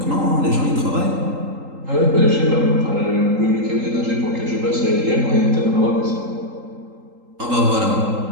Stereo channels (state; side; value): late; left; 3.8 ms